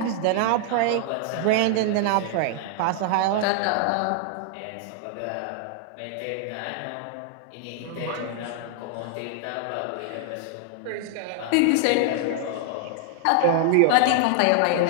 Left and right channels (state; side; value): different; both; correlation 0.00